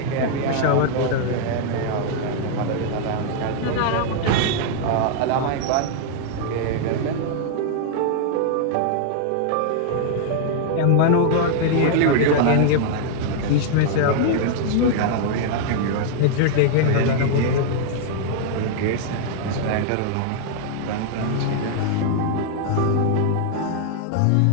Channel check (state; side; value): different; both; correlation 0.00